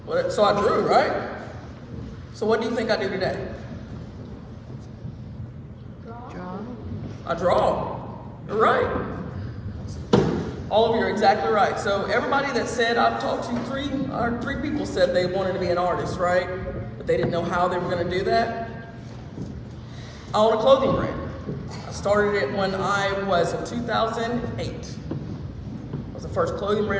So I drew, right? So what do you think I do today? I draw. You're right. All of you are exactly right. So everybody that said I've talked to three people said they wanted to be an artist, right? But they didn't know how they were going to do that. I own a clothing brand. I started it when I was in 2008. It was the first clothing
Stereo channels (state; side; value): identical; both; correlation 1.00